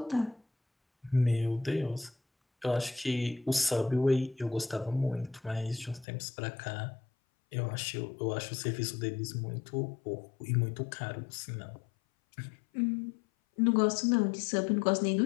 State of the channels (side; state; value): right; drops out; at 6.1 s